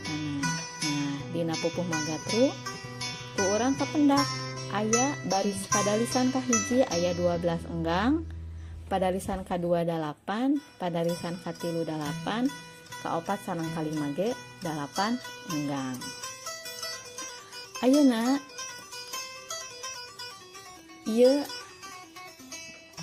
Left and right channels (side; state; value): both; identical; correlation 1.00